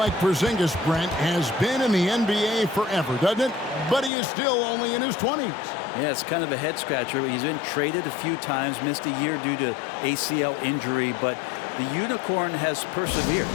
Porzingis, Brent, has been in the NBA forever, doesn't it? But he is still only in his 20s. Yeah, it's kind of a head scratcher. He's been traded a few times, missed a year due to ACL injury, but the Unicorn has persevered,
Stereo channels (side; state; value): right; drops out; at 4.1 s